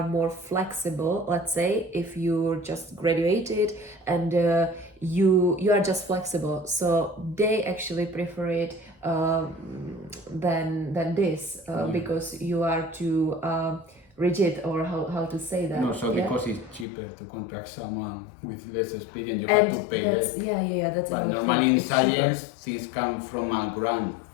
more flexible. Let's say if you just graduated and you are just flexible, so they actually prefer it than this because you are too rigid, or how to say that. No, so because it's cheaper to contract someone with less experience, you have to pay less. That's But normally in science, things come from a grant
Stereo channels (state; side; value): drops out; right; at 16.9 s